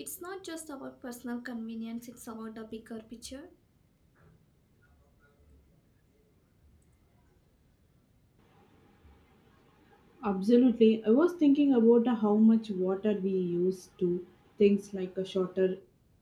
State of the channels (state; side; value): identical; both; correlation 1.00